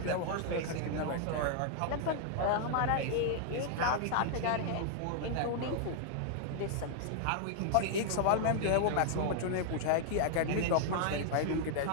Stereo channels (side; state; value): both; different; correlation 0.00